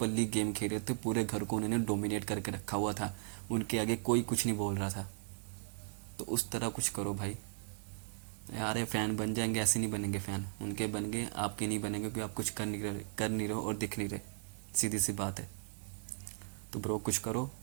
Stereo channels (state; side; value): silent; left; digital silence